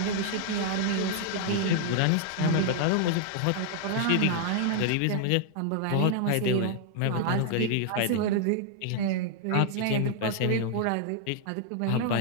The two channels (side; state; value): both; different; correlation -0.01